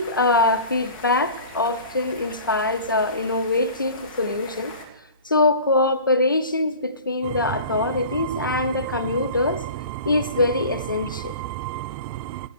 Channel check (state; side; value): inverted; both; correlation -0.40